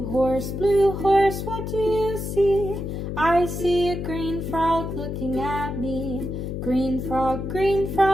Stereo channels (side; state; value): left; noise; hum, 5 dB below the sound